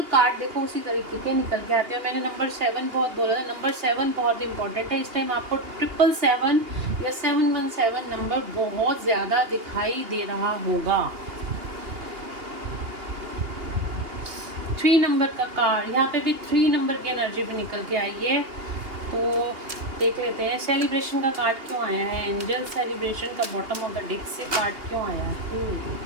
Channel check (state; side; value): late; left; 2.8 ms